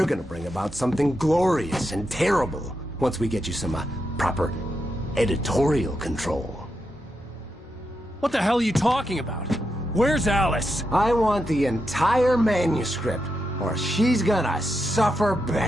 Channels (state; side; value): normal; both; correlation 0.85